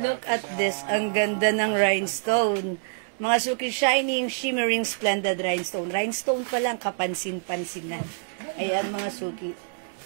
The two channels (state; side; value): silent; left; digital silence